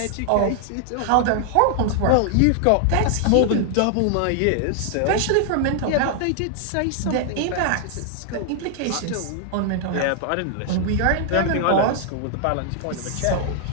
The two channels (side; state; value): both; different; correlation 0.00